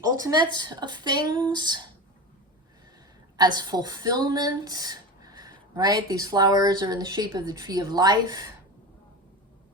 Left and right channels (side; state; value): both; normal; correlation 0.26